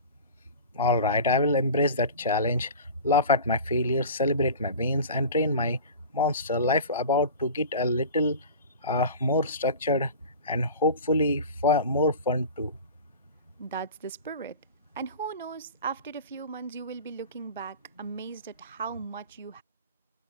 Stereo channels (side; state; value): both; inverted; correlation -0.35